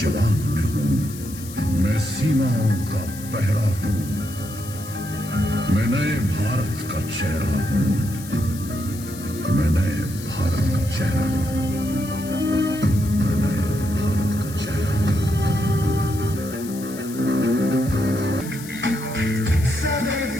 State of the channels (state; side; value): noise; left; hiss, 15 dB below the sound